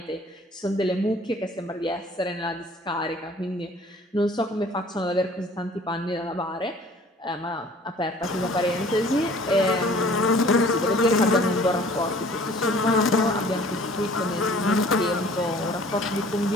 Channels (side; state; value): both; normal; correlation 0.51